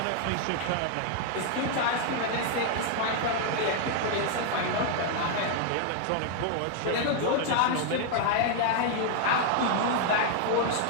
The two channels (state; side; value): different; both; correlation 0.00